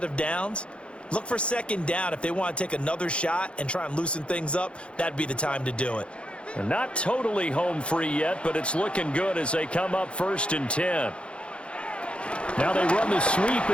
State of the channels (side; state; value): right; late; 0.058 ms